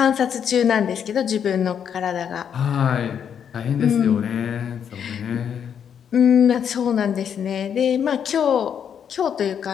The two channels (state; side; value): quieter; right; 8.1 dB